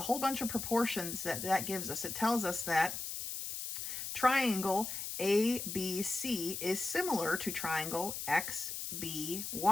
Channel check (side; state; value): left; noise; hiss, 5 dB below the sound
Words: whole bunch of proportions that gives us. It tells us that triangle ABC is similar to triangle